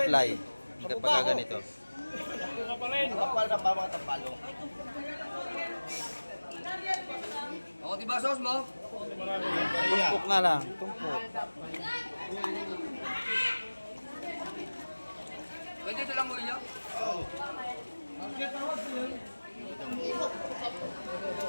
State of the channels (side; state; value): both; inverted; correlation -1.00